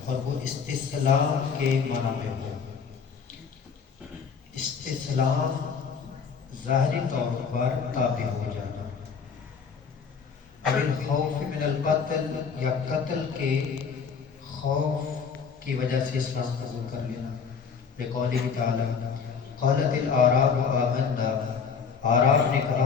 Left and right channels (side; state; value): right; quieter; 6.1 dB